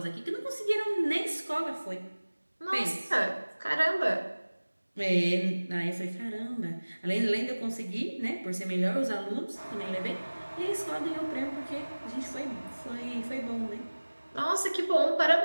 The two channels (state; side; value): inverted; both; correlation -1.00